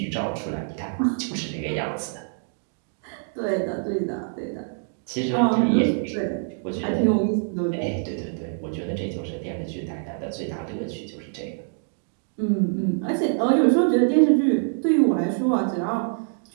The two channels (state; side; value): silent; left; 62 dB below the other